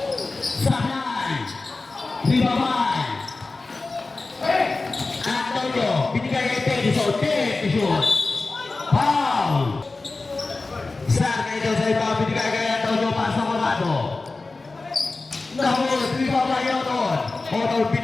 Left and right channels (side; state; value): right; quieter; 3.6 dB